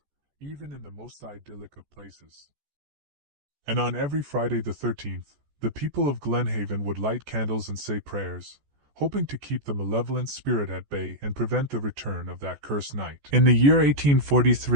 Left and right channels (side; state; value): left; late; 14 ms